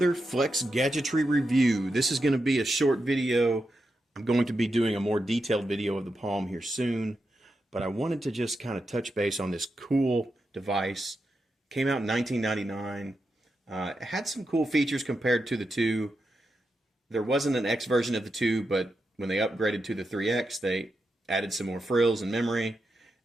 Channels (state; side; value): normal; both; correlation 0.87